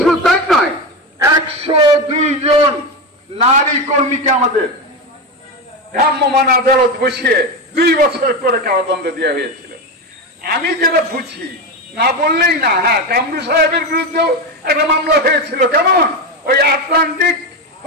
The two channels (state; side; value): normal; both; correlation 0.16